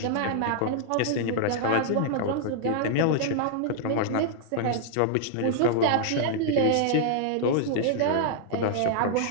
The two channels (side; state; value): both; different; correlation -0.01